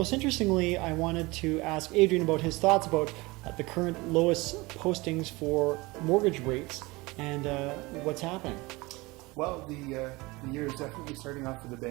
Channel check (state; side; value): quieter; left; 23.1 dB